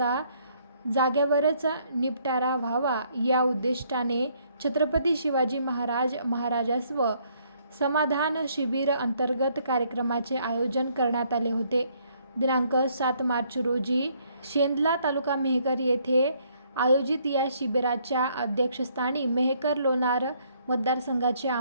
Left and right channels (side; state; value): both; inverted; correlation -0.67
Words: जागेवरच निपटारा व्हावा या उद्दिष्टाने छत्रपती शिवाजी महाराजस्व समाधान शिबिर अंतर्गत कार्यक्रमाचे आयोजन करण्यात आले होते. दिनांक 7 मार्च रोजी शेंदला तालुका मेहकर येथे आयोजित या शिबिराच्या अध्यक्षस्थानी मेहकर लोणार मतदारसंघाचे